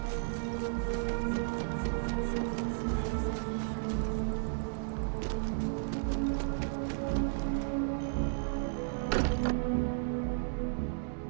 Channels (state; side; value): silent; left; digital silence